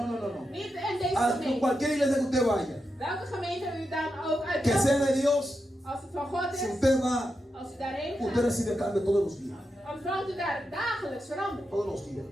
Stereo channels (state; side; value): normal; both; correlation 0.87